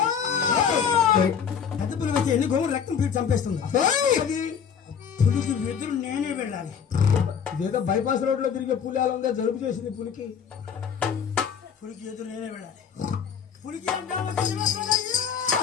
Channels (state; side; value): quieter; right; 7.3 dB